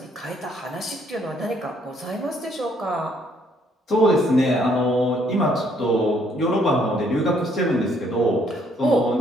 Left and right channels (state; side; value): normal; both; correlation 0.67